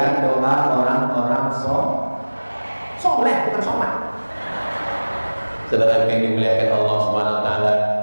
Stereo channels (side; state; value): both; inverted; correlation -1.00